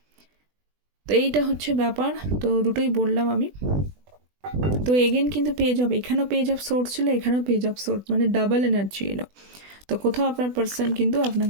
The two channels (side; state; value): left; late; 20 ms